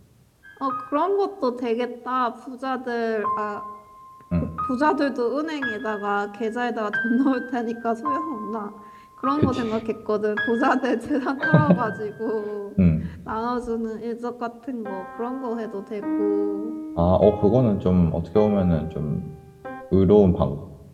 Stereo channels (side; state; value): both; identical; correlation 1.00